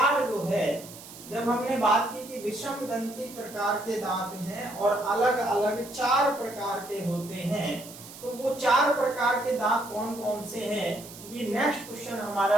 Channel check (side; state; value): right; noise; hiss, 16 dB below the sound